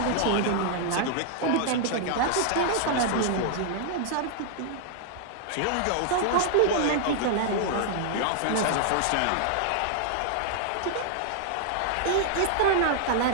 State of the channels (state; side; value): different; both; correlation -0.01